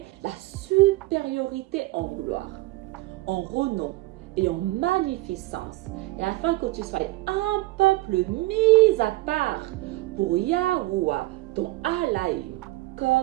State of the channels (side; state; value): left; quieter; 19.3 dB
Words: la supériorité en gloire, en renom et en magnificence, et afin que tu sois un peuple mis à part pour Yahuwah, ton Alaïm,